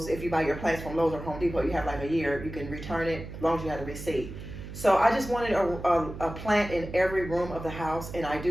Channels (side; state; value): right; noise; hum, 11 dB below the sound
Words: if you buy your plants from Lowe's or Home Depot, you have like a year. You can return it as long as you have a receipt. So I just wanted a plant in every room of the house, and I